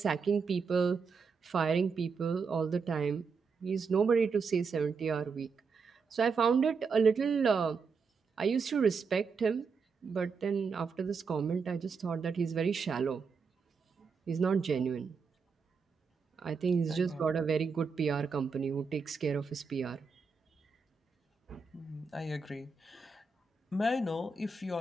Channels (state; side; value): quieter; left; 5.1 dB